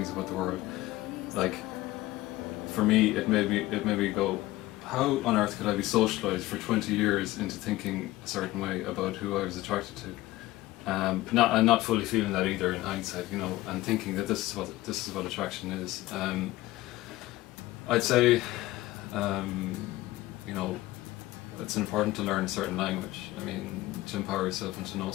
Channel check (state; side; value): quieter; right; 17.6 dB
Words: about the world. Like, for me, it made me go, how on earth could I be socialised for 20 years into thinking a certain way about who I was attracted to? Not fully feeling that either in hindsight, you know, and thinking that this is what attraction is. I'd say, you know, it's important to learn a certain language. I mean, to empower yourself and to know